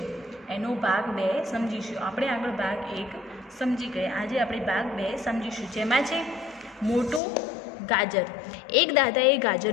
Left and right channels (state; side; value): drops out; right; at 7.2 s